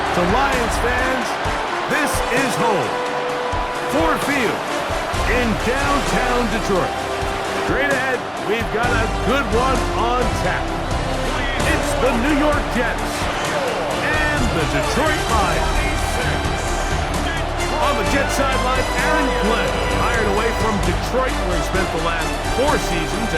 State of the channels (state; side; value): identical; both; correlation 1.00